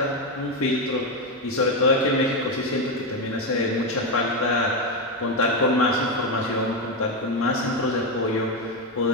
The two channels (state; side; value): normal; both; correlation 0.09